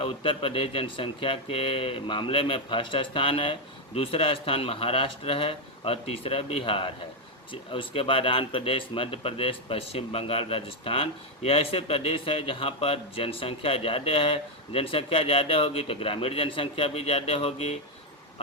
उत्तर प्रदेश जनसंख्या के मामले में फर्स्ट स्थान है, दूसरा स्थान महाराष्ट्र है और तीसरा बिहार है। उसके बाद आंध्र प्रदेश, मध्य प्रदेश, पश्चिम बंगाल, राजस्थान, ये ऐसे प्रदेश है जहाँ पर जनसंख्या ज़्यादा है। जनसंख्या ज़्यादा होगी तो ग्रामीण जनसंख्या भी ज़्यादा होगी।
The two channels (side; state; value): both; normal; correlation 0.03